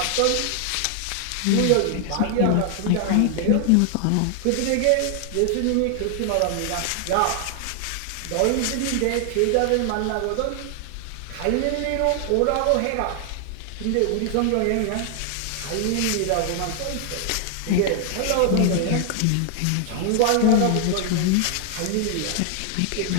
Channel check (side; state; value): both; different; correlation 0.00